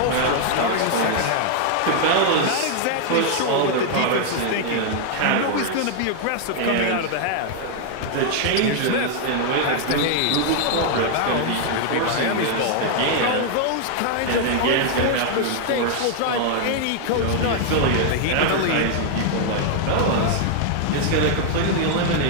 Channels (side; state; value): both; different; correlation 0.00